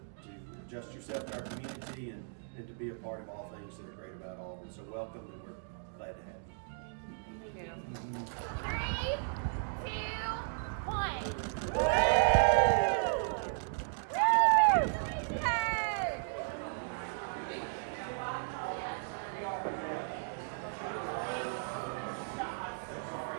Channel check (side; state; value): left; silent; digital silence